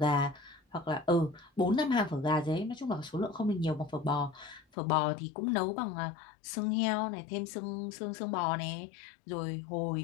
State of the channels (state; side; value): drops out; right; at 4.7 s